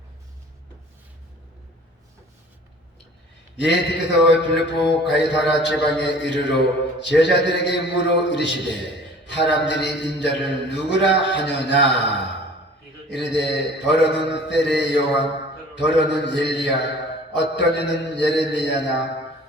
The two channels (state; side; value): normal; both; correlation 0.47